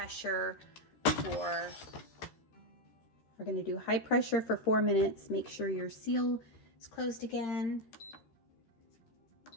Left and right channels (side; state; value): right; late; 13 ms